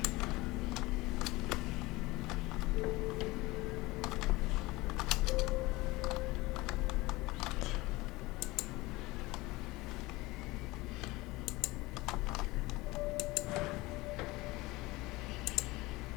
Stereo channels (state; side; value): quieter; right; 21.2 dB